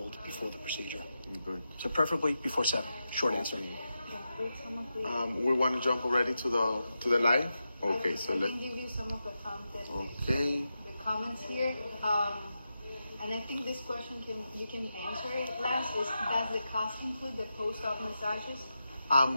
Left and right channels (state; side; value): inverted; both; correlation -0.89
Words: before the procedure. Good. So preferably before 7. Short answer. We want to jump already to the live. Okay, so I can give you some of the content. Okay. The comments here. And I think this question you can answer it last. Does the cost include the post-op massages?